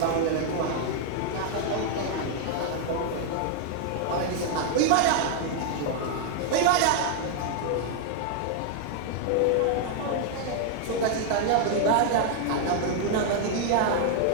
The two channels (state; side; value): different; both; correlation 0.00